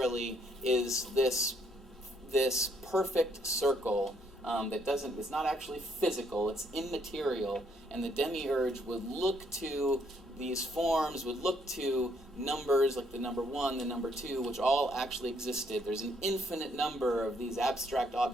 is this perfect circle it's not actually physical, it's immaterial, and the demiurge would look to these forms, would look to numbers like the number 1, the number 2, which all actually existed. There's an infinite number of these abstract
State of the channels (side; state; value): both; normal; correlation 0.70